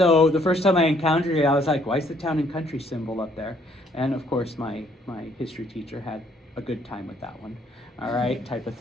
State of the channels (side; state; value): both; normal; correlation 0.65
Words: the first time I encountered it, I was like, why is the Town and Country symbol up there? And of course, my history teacher had a good time with that one. All right, type of